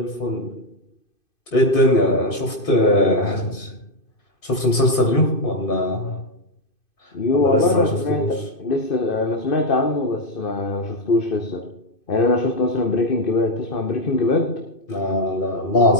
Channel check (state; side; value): late; right; 2.5 ms